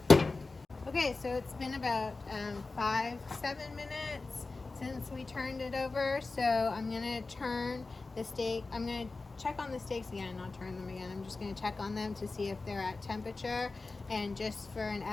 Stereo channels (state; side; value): quieter; right; 3.7 dB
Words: Okay, so it's been about 5-7 minutes since we turned it over. So I'm gonna turn the steak. I'm gonna check on the steaks again, not turn them again. I'm just gonna check on them to see if they're at temperature. And just for an